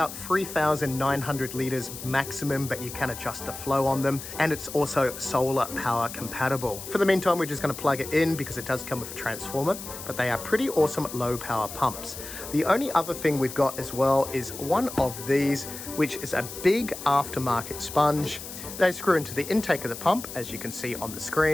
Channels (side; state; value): left; noise; hiss, 11 dB below the sound